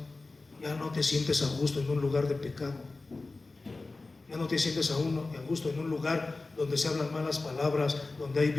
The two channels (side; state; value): right; quieter; 3.5 dB